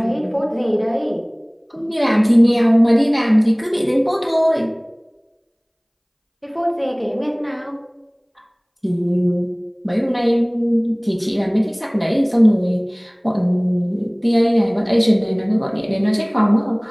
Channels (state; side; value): identical; both; correlation 1.00